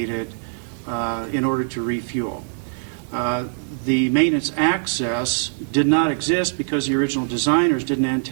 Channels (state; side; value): silent; left; digital silence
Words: in order to refuel. The maintenance access did not exist because the original designers didn't